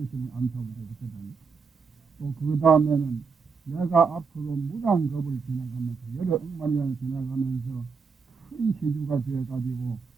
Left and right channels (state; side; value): quieter; left; 5.3 dB